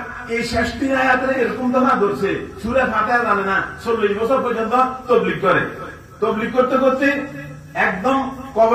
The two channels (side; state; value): both; identical; correlation 1.00